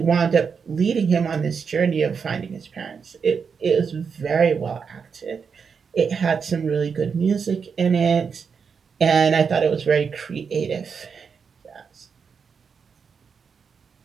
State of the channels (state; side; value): quieter; left; 6.0 dB